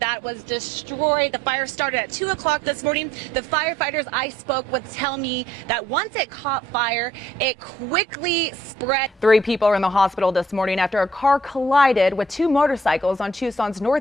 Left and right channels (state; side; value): normal; both; correlation 0.63